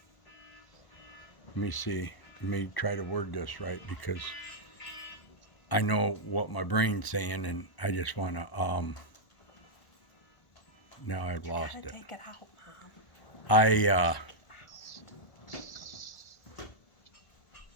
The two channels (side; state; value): right; late; 1.1 ms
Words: me see. Let me try to word this right because I know what my brain's saying and I just want to now I've You lost gotta it. take it out, Mom. I